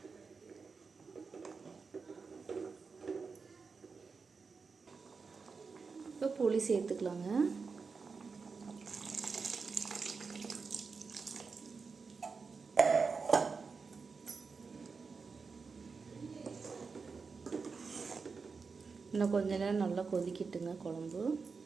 இப்போ புளி சேர்த்துக்கலாங்க. இன்னும் கொஞ்ச நேரம் நல்லா கொதிக்கிட்டுங்க குழம்பு.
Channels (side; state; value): left; quieter; 4.9 dB